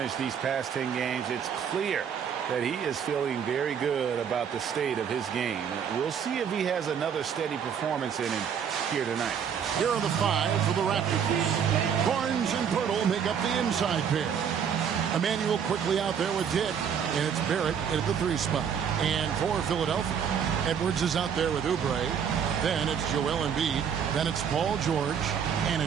these past 10 games, it's clear that he is feeling very good about the state of his game. We'll see if he has another steady performance in him here tonight. Here are the five for the Raptors. Barnes and Pirtle make up the inside pair. Emmanuel quickly out there with Dick, and it's Barrett at the 3 spot. And for Philadelphia, Edwards is out there with Oubre. Then it's Joel Embiid. Then it's Paul George. And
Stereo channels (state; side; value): quieter; left; 7.7 dB